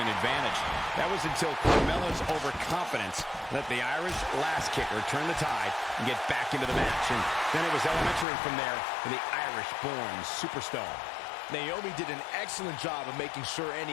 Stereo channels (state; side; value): drops out; right; at 8.2 s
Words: advantage. That was until Carmella's overconfidence let the Irish last kicker turn the tide and get back into the match. And then it was elementary from there for the Irish-born superstar. Naomi did an excellent job of making sure